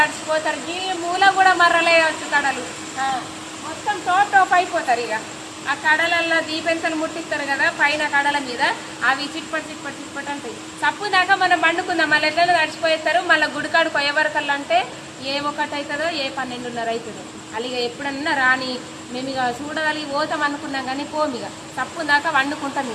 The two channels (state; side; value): identical; both; correlation 1.00